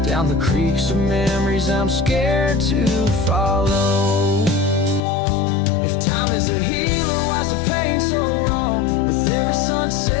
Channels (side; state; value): right; drops out; at 5.0 s